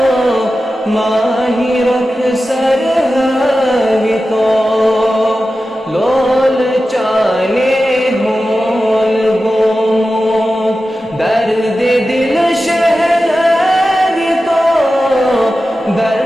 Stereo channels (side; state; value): both; normal; correlation 0.93